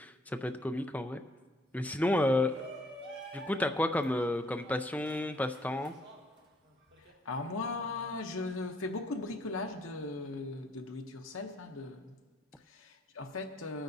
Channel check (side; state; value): both; normal; correlation 0.65